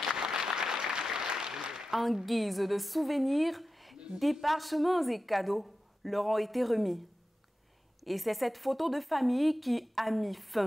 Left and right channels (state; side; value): normal; both; correlation 0.93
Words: En guise de souvenir, des parchemins et cadeaux leur ont été remis. Et c'est cette photo de famille qui a mis